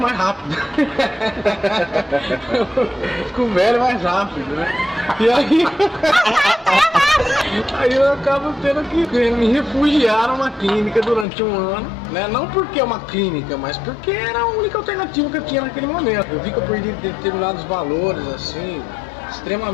mais rápido. Eu fico velho mais rápido, né? E aí eu acabo tendo que me refugiar numa clínica durante um ano, né? Não porque é uma clínica, mas porque era a única alternativa que eu tinha naquele momento. Eu vi que eu perdi determinados valores, assim,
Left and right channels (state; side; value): drops out; right; at 11.2 s